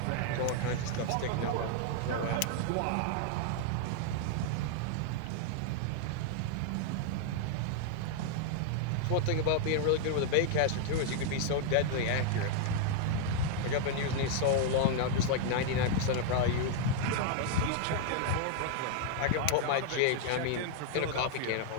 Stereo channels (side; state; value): both; different; correlation 0.00